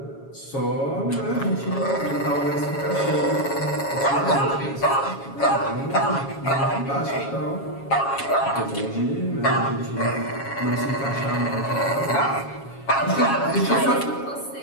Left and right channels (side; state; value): right; late; 7.3 ms